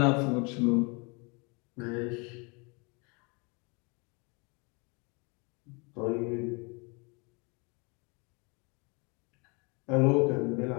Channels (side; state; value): right; quieter; 30.9 dB